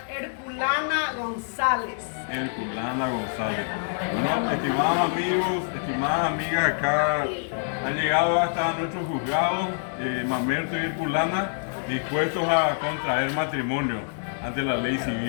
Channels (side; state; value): right; silent; digital silence